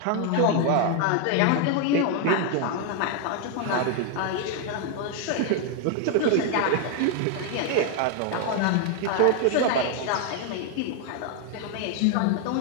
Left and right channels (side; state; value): both; different; correlation 0.00